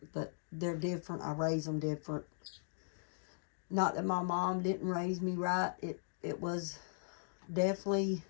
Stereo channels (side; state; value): right; silent; digital silence